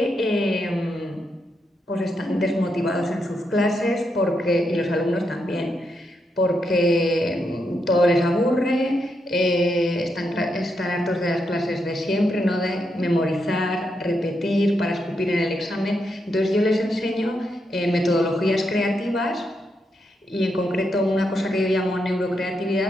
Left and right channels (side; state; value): both; normal; correlation 0.82